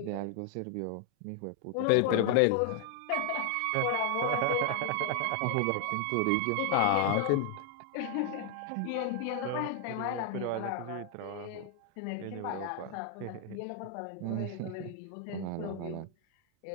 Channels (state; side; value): different; both; correlation 0.00